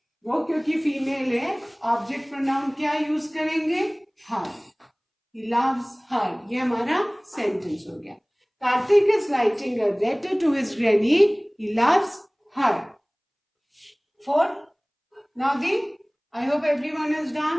वो क्योंकि फीमेल है ऑब्जेक्ट प्रोनाउन क्या यूज करेंगे? हर. He loves her. ये हमारा सेंटेंस हो गया. Karthik is writing a letter to his granny. He loves her. 4. Now I hope everyone is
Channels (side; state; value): both; identical; correlation 1.00